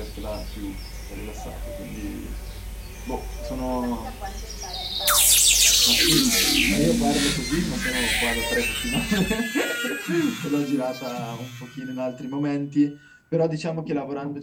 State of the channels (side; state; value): both; identical; correlation 1.00